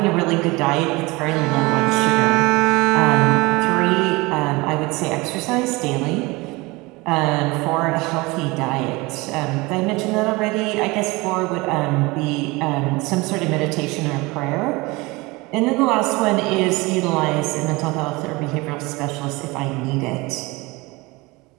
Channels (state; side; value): quieter; left; 23.6 dB